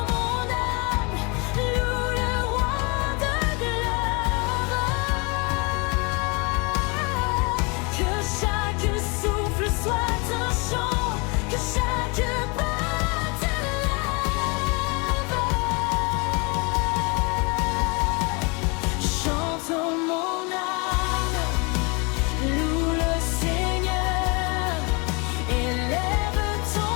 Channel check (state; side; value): quieter; right; 30.2 dB